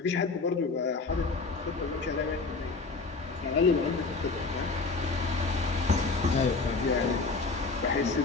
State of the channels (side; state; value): right; quieter; 4.0 dB